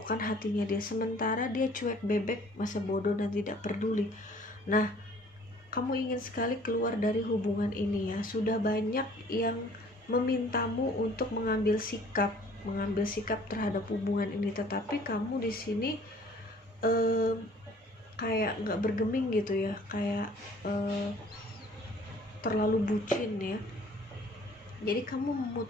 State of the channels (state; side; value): normal; both; correlation 0.54